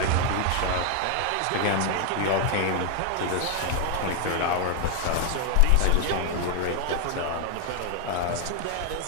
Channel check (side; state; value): both; different; correlation 0.00